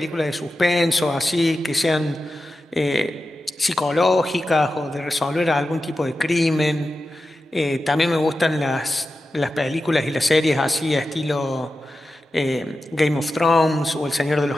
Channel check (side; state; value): both; normal; correlation 0.92